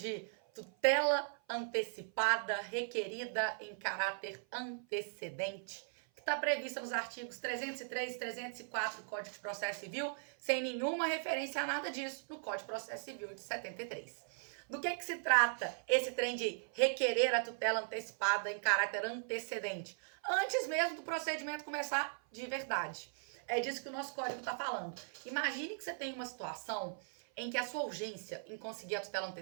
tutela antecipada requerida em caráter antecedente, que está prevista nos artigos 303 e 304 do Código de Processo Civil, sem nenhuma referência a nada disso no Código de Processo Civil de 73. Do que se trata esse trem de requerer a tutela antecipada em caráter antecedente? Antes mesmo do procedimento começar de verdade. É disso que o nosso código está falando. Imagine que você tem uma situação em que a sua urgência em conseguir a tutela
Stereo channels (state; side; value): silent; left; 52 dB below the other